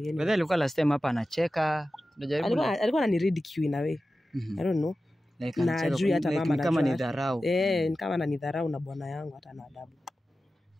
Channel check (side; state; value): both; normal; correlation 0.94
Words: yeye. Wewe alikuwa last time hapa anacheka. Alikuwa ananiridicule in a way. I don't know. Like na juu hata mama kama ni dharau. Ni kama na ni dharau na bwana yangu hata na adabu.